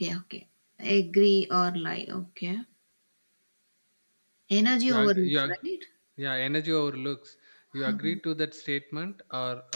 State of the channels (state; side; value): inverted; both; correlation -1.00